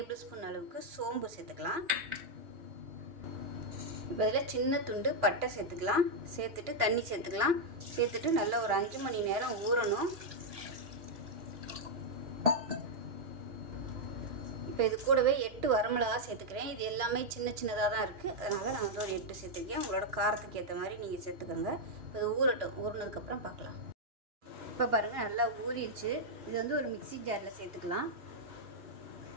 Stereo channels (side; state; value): left; late; 2.9 ms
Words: ஸ்பூன் அளவுக்கு சோம்பு சேர்த்துக்கலாம். இப்போ இதில் சின்ன துண்டு பட்டை சேர்த்துக்கலாம். சேர்த்துட்டு தண்ணி சேர்த்துக்கலாம். சேர்த்துட்டு நல்லா ஒரு 5 மணி நேரம் ஊறணும். இப்போ இது கூடவே 8 வரமிளகா சேர்த்துக்கிறேன். இது எல்லாமே சின்ன சின்னதாக தான் இருக்குது. அதனால் நான் வந்து ஒரு 8 சேர்த்துருக்கேன். உங்களோட காரத்துக்கு ஏற்ற மாதிரி நீங்கள் சேர்த்துக்கோங்க. இப்போ இது ஊறட்டும். ஊறினதுக்கப்புறம் பார்க்கலாம். இப்போ பாருங்கள் நல்லா ஊறிடுச்சு. இது வந்து ஒரு மிக்சி ஜாரில் சேர்த்துக்கலாம்.